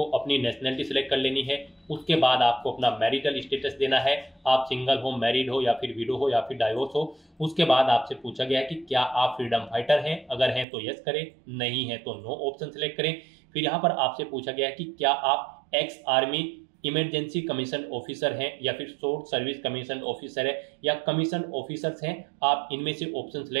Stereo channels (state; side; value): drops out; left; at 10.7 s